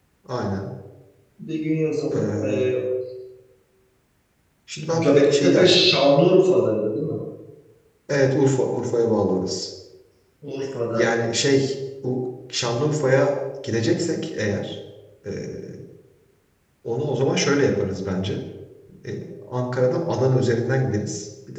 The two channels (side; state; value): both; identical; correlation 1.00